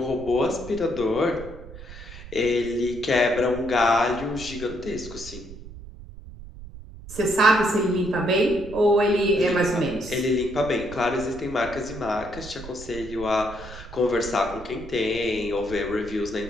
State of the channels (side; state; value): right; noise; rumble, 14 dB below the sound